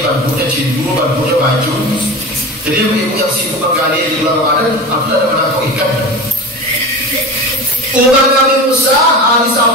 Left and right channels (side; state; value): both; normal; correlation 0.30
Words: cindu bantunya baju. Jadi ibu yang sibuk menggali di bulan Ramadan, aku ada menangkap ikan. Umat Nabi Musa hari